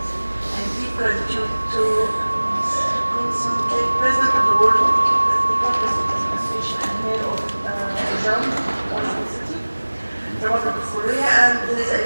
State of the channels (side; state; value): both; inverted; correlation -1.00